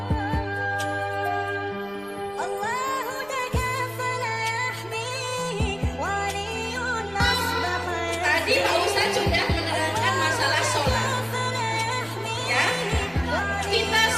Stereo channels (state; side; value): noise; right; rumble, 25 dB below the sound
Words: Tadi Pak Ustadz sudah menerangkan masalah sholat, ya. Kita